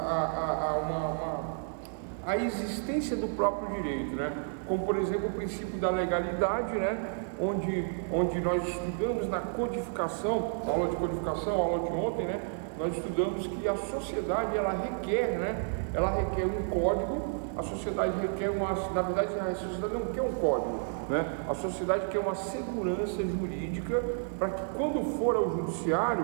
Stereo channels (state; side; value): silent; left; digital silence